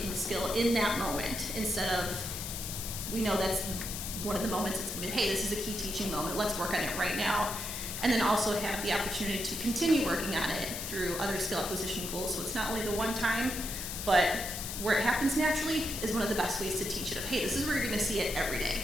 the skill in that moment, instead of, we know that's one of the moments it's gonna be, hey, this is a key teaching moment, let's work on it right now. And then also have the opportunity to continue working on it through other skill acquisition goals. So it's not only the one time, but where it happens naturally is one of the best ways to teach it of, hey, this is where you're gonna see it every day.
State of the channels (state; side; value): noise; left; hiss, 6 dB below the sound